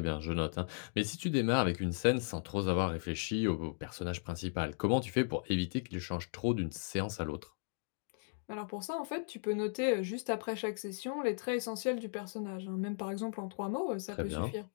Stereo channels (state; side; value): silent; right; digital silence